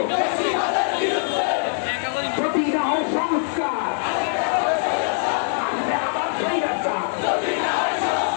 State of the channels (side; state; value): right; silent; 64 dB below the other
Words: যদি না হয় সংস্কার আবার স্বৈরাচার, যদি না